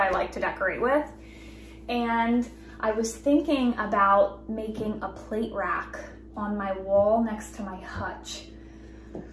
like to decorate with. And I was thinking about making a plate rack on my wall next to my hutch.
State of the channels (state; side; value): identical; both; correlation 1.00